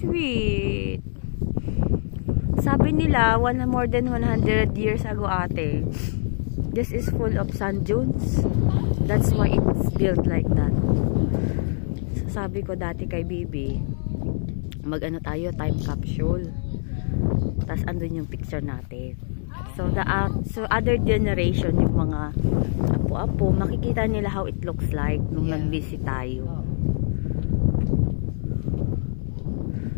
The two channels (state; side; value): silent; right; 61 dB below the other